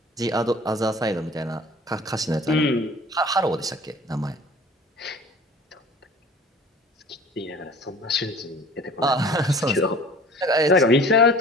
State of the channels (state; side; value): normal; both; correlation 0.46